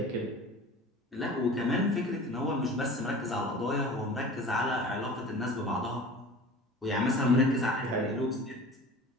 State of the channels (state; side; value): normal; both; correlation 0.39